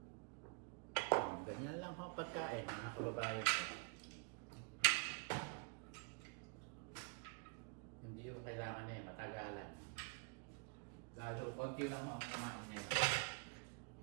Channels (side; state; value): left; quieter; 37.6 dB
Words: Ganyan lang ho pagkain, mga kababayan ko. Hindi yung kailangan matagalan. Lalo, konti lang ho ang kumain nila.